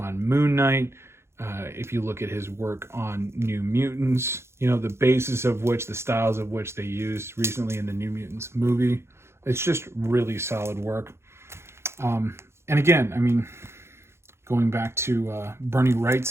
Moon Knight, if you look at his work on New Mutants, the basis of which, the styles of which they used recently in the New Mutants movie, it's just really solid work. And again, going back to Bernie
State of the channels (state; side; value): late; left; 0.12 ms